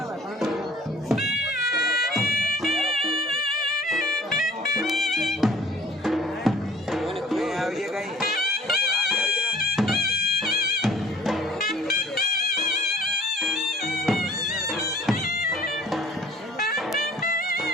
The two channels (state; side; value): normal; both; correlation 0.50